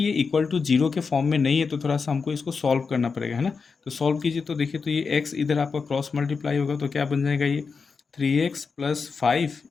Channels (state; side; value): quieter; right; 5.1 dB